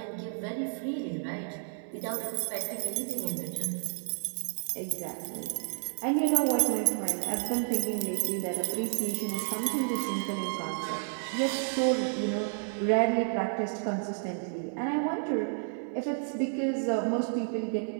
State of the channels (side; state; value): left; silent; 57 dB below the other